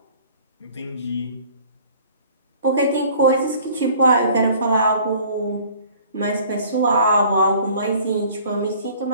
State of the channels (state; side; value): inverted; both; correlation -0.52